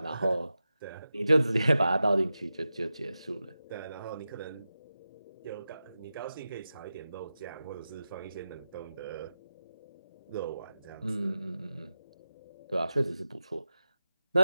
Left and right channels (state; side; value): inverted; both; correlation -0.92